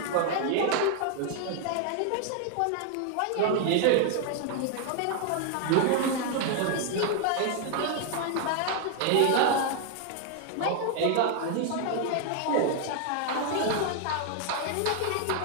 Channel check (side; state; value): both; different; correlation 0.00